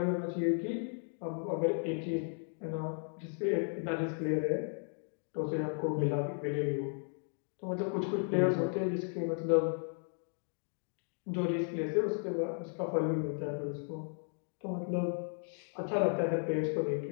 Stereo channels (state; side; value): silent; right; 54 dB below the other